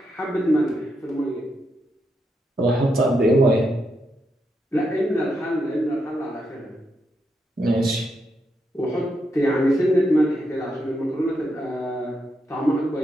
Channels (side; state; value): both; normal; correlation 0.82